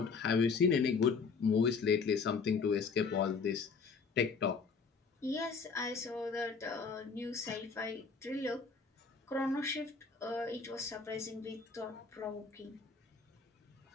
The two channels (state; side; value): quieter; right; 5.1 dB